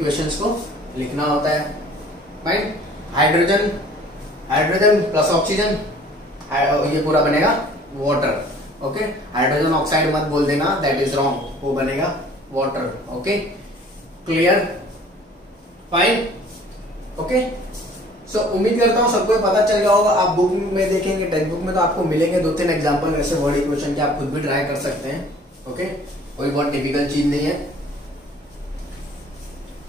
को लिखना होता है, right. Hydrogen, hydrogen plus oxygen, ये पूरा बनेगा वाटर, ओके। हाइड्रोजन ऑक्साइड मत बोल देना, दैट इज रॉन्ग, वो बनेगा water, okay clear fine, okay. So उम्मीद करता हूं सबको पता चल गया होगा। आप बुक में देखेंगे, टेक्स्ट बुक में तो आपको मिलेंगे 2-3 एग्जांपल ऐसे वर्ड इक्वेशन के, आप खुद भी ट्राई कर सकते हैं, ओके, कोई बहुत डिफिकल्ट चीज नहीं है।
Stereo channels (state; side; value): normal; both; correlation 0.52